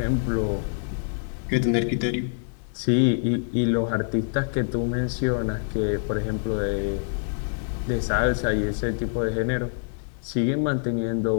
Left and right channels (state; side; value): silent; right; digital silence